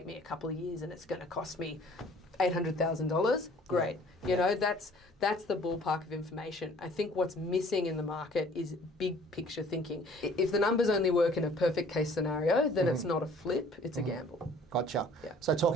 me a couple of years and it's going to cost me $800,000, great. You know, that's the ballpark of information. I think what's missing in the market is big picture thinking. If the numbers only work in a perfect case scenario, then it's not a flip, it's a gamble. Gotcha. So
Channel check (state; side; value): normal; both; correlation 0.54